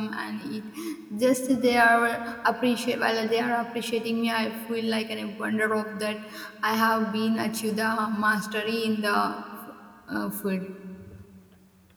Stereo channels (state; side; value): identical; both; correlation 1.00